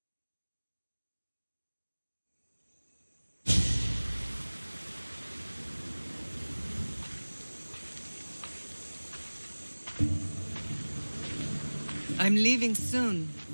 I'm leaving soon.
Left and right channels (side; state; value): both; inverted; correlation -1.00